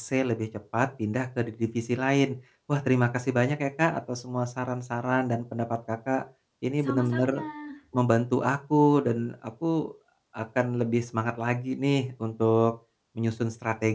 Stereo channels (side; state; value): both; identical; correlation 1.00